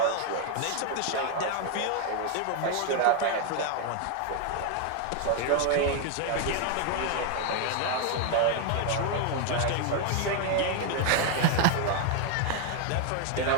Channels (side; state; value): both; different; correlation 0.00